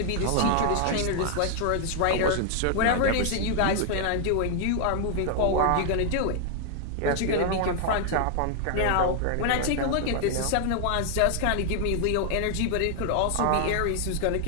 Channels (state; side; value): different; both; correlation 0.00